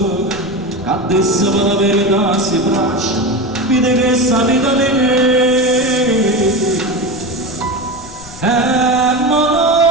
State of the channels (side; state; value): left; noise; rumble, 17 dB below the sound